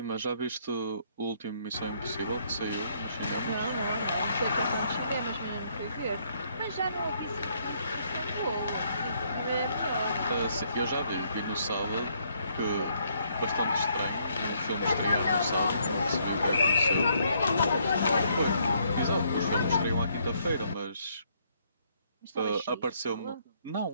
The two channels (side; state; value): both; inverted; correlation -0.70